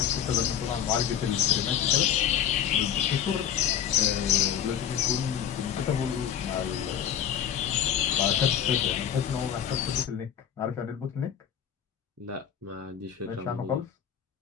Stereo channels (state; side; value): quieter; right; 9.2 dB